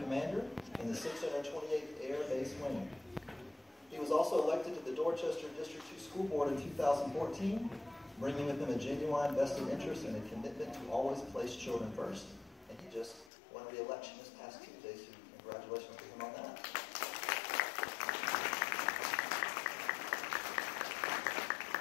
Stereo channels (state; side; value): drops out; right; at 13.3 s